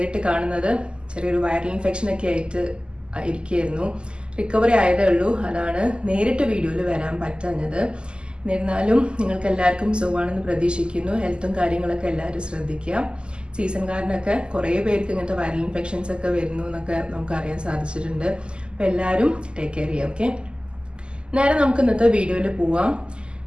കാണുന്നത്. ചെറിയൊരു വൈറൽ ഇൻഫെക്ഷൻ ഒക്കെ ആയിട്ട് ഇരിക്കുകയായിരുന്നു. റിക്കവറി ആയതേ ഉള്ളൂ. അതാണ് നേരിട്ട് വീഡിയോയിൽ വരാൻ പറ്റാഞ്ഞത്. എന്നിരുന്നാലും നിങ്ങൾക്ക് എല്ലാവർക്കും സുഖമാണെന്ന് പ്രതീക്ഷിക്കുന്നു. ഹെൽത്തും കാര്യങ്ങളൊക്കെ എല്ലാവരും ശ്രദ്ധിക്കുക. സീസൺ കാരനൊക്കെ കുറേ പേർക്ക് ഇങ്ങനത്തെ വൈറൽ ഇൻഫെക്ഷൻസ് ഒക്കെ വരുന്നു എന്നൊക്കെ നമുക്ക് അറിയാൻ സാധിച്ചിട്ടുണ്ട്. അപ്പോൾ എല്ലാവരും ടേക്ക് കെയർ ചെയ്യുക. ഓക്കെ, നേരെ നമുക്ക് ഇന്നത്തെ വീഡിയോയിൽ പോവാം.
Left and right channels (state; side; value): late; left; 0.049 ms